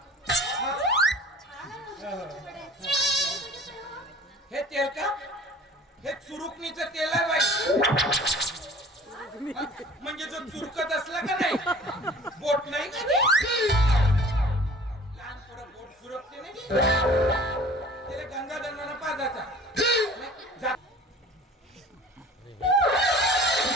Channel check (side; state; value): both; normal; correlation 0.46